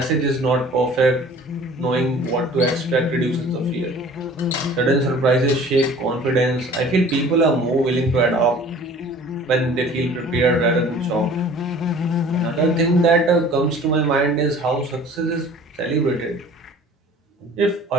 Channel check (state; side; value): normal; both; correlation 0.48